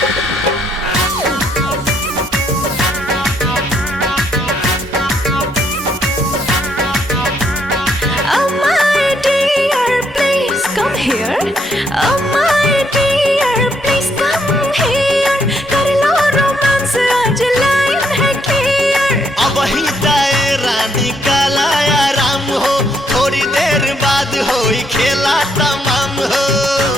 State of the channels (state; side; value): normal; both; correlation 0.73